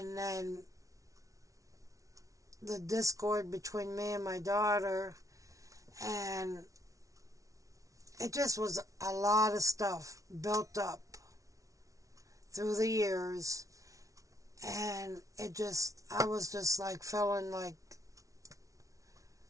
then the discord between me and my daughter, and it just was a lot of stuff built up through the years, and I was just like feeling like,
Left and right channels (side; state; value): left; late; 0.16 ms